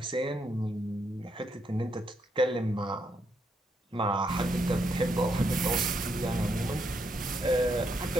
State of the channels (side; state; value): both; normal; correlation 0.78